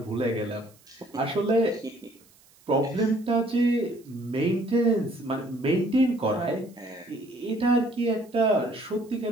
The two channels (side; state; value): right; noise; hiss, 29 dB below the sound